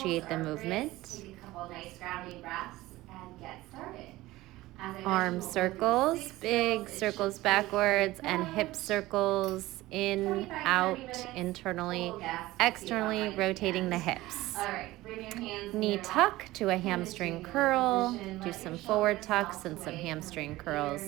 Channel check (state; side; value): quieter; left; 17.9 dB